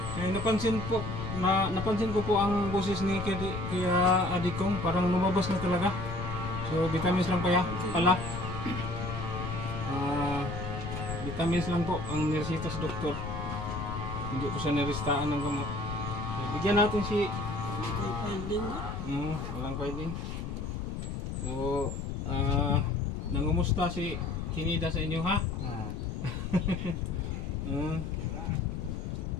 Napansin ko po ang boses ni Kuya Adikong, parang lumabas na talaga. So vitamins lang pala. Vitamins lang po ang niresita sa doktor. Hindi po siya nirestaan ng gamot. So, bigyan natin si Hindi kayo finding mo. walang filing. So, nangumusta si Tinida sa inyo, ha?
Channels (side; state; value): left; noise; rumble, 5 dB below the sound